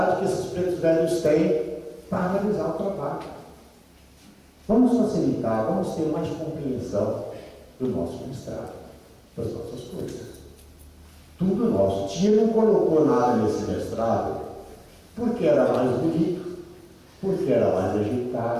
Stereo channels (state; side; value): identical; both; correlation 1.00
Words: que esses pretos velhos têm para realizar o trabalho. Vamos facilitar, vamos ter mais compreensão do nosso mestrado, das nossas coisas. Tudo nosso. Tia não colocou nada nesse mestrado porque era mais bonito, porque era mais